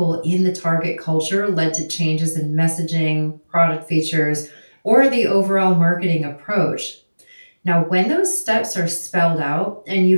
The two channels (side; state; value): both; inverted; correlation -1.00